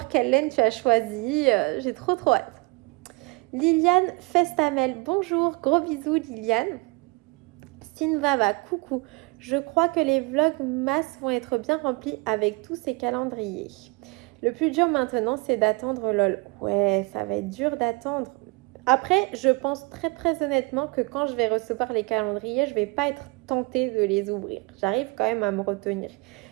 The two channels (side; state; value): left; quieter; 27.1 dB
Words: quelle laine tu as choisi. J'ai trop trop hâte. Liliane Festamel, bonjour, gros bisous, Liliane. Sinvava, coucou. Je crois que les vlogs masse vont être bien remplis avec tous ces calendriers. Le plus dur maintenant, c'est d'attendre LOL. Ouais, ça va être dur d'attendre. Après, je pense très très honnêtement que quand je vais recevoir les calendriers, je vais pas être tentée de les ouvrir. J'arrive quand même à me retenir.